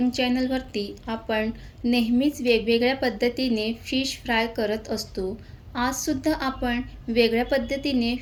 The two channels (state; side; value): identical; both; correlation 1.00